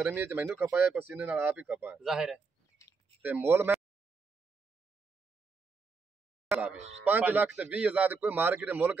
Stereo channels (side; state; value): left; quieter; 4.6 dB